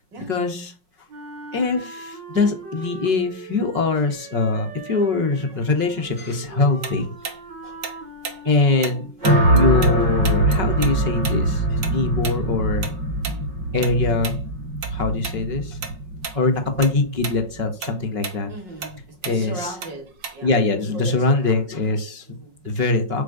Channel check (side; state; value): left; late; 5.6 ms